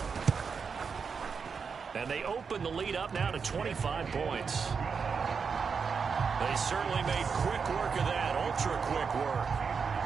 And they open the lead up now to 25 points. They certainly made quick work of that, ultra-quick work.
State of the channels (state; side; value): quieter; left; 5.7 dB